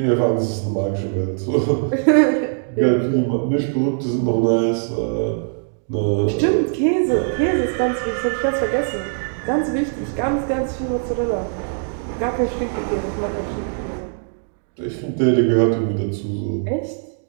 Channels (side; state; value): left; silent; digital silence